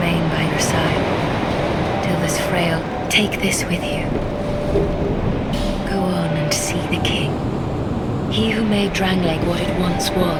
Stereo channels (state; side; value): identical; both; correlation 1.00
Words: by your side till this frail. Take this with you. Go on and see the king. He who made Drangleic what it once